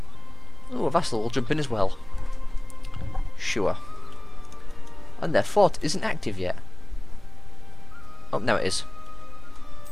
Oh, a vassal will jump in as well. Sure. And their fort isn't active yet. Oh, now it is.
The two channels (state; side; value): noise; left; rumble, 18 dB below the sound